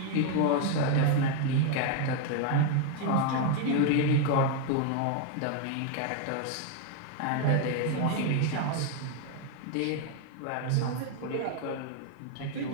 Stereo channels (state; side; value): different; both; correlation 0.01